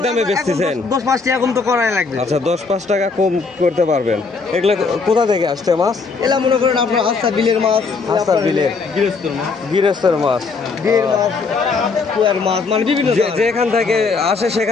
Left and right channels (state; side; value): quieter; right; 4.5 dB